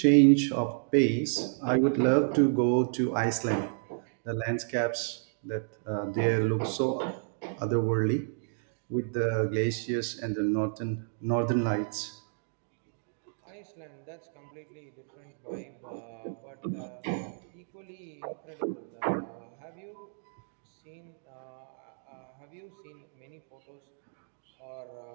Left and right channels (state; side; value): silent; left; digital silence